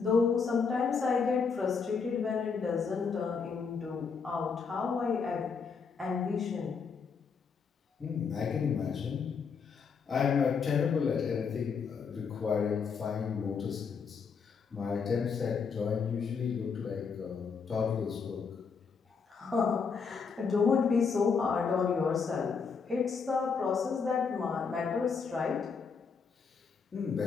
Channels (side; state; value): right; quieter; 5.6 dB